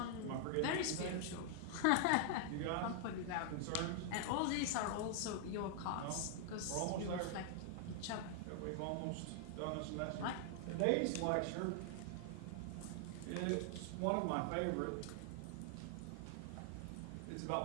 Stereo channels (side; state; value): both; different; correlation 0.00